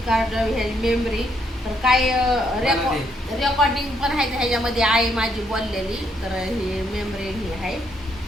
कार्ड ह्याची मेमरी तर काय रेकॉर्डिंग पण आहे ह्याच्यामध्ये आई माझी बोललेली तर ही मेमरी ही आहे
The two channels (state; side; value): normal; both; correlation 0.73